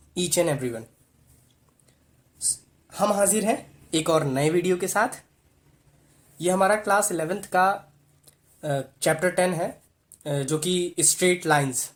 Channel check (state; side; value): identical; both; correlation 1.00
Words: each and everyone. हम हाजिर हैं एक और नए वीडियो के साथ। ये हमारा क्लास 11th का चैप्टर 10 है, जो कि स्ट्रेट लाइंस